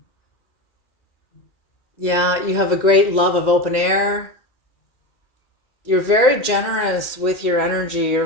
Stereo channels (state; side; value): late; right; 2.0 ms